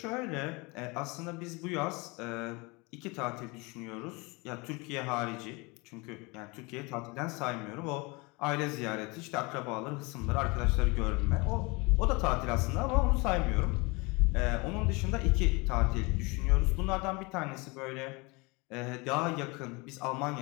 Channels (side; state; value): right; quieter; 26.9 dB